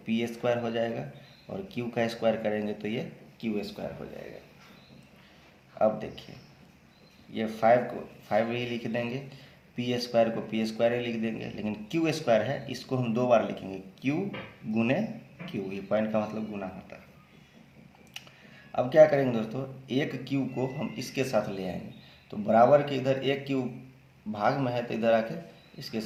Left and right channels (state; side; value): identical; both; correlation 1.00